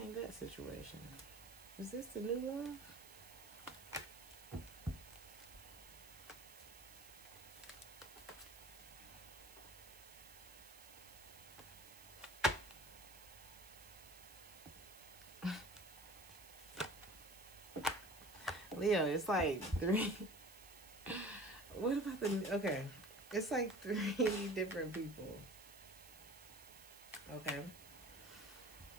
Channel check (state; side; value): noise; right; hiss, 17 dB below the sound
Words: that situation. Is this the new love? Leo, it's like 3. What about the... Okay. It's like 3 different people. Okay.